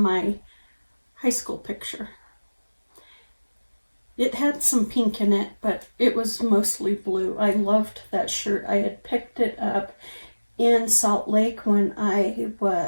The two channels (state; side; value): inverted; both; correlation -1.00